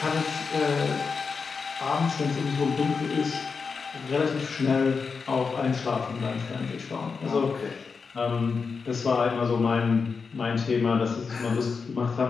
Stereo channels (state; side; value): quieter; right; 5.2 dB